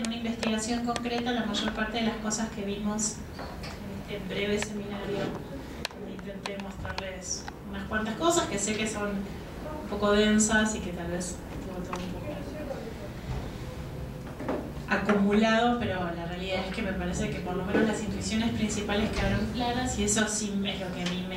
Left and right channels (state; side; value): identical; both; correlation 1.00